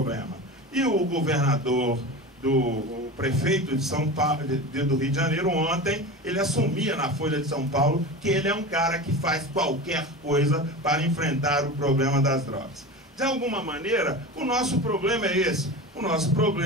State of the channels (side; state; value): both; normal; correlation 0.29